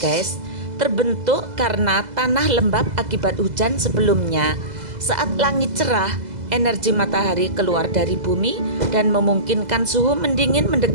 guys. Terbentuk karena tanah lembab akibat hujan sebelumnya. Saat langit cerah, energi matahari keluar dari bumi dan memungkinkan suhu mendingin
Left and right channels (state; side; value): late; left; 2.0 ms